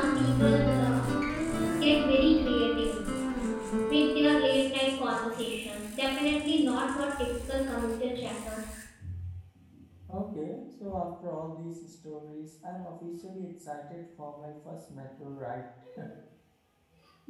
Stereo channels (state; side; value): identical; both; correlation 1.00